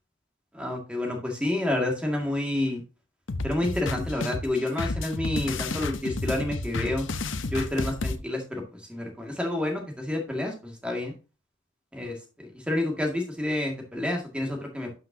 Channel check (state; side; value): normal; both; correlation 0.81